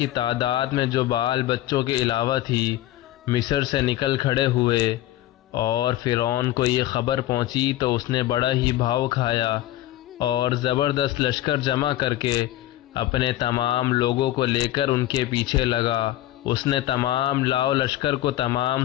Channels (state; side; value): quieter; right; 14.8 dB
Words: تعداد میں جو بال بچوں کے علاوہ تھی مصر سے نکل کھڑے ہوئے اور فرعون کو یہ خبر پہنچی تو اس نے بڑا ہی بھاؤ کھایا اور زبردست لشکر جمع کر کے اپنے تمام لوگوں کو لے کر ان کے پیچھے لگا۔ اس نے تمام لاؤ لشکر کو، تمام